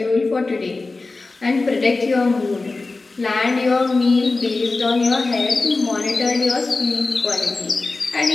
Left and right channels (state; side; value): quieter; right; 3.6 dB